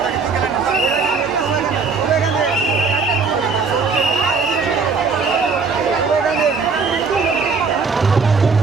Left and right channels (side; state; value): left; quieter; 4.8 dB